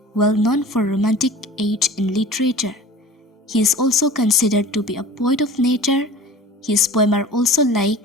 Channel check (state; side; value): normal; both; correlation 0.41